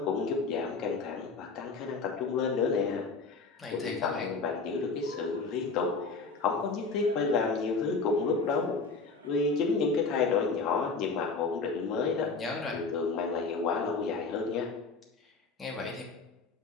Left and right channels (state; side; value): quieter; right; 4.3 dB